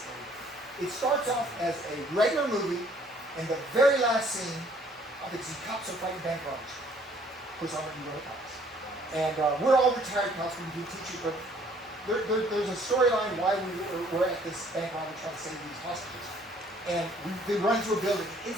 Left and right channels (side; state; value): both; normal; correlation 0.60